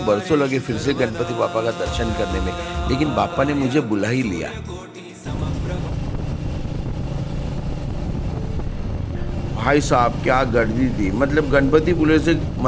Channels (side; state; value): both; identical; correlation 1.00